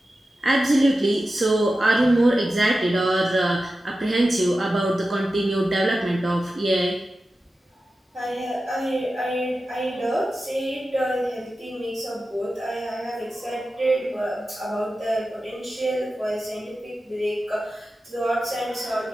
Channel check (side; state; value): both; normal; correlation 0.93